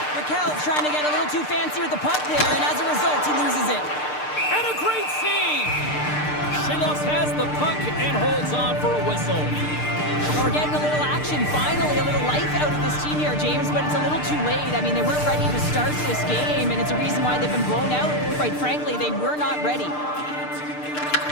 Raquel's trying to get a little too fancy with the puck there, and as a result, he loses it. And a great save! Shilovs has the puck and holds on for a whistle. We're getting a little action, finally, a little life out of this team here, James, but it's a little too late. I mean, they weren't ready to start this game, and it's a reason why they've been blown out. Quite frankly, they were not ready.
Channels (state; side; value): late; right; 6.7 ms